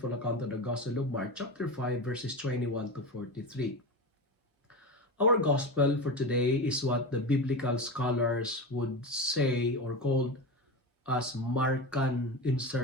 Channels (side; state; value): both; normal; correlation 0.24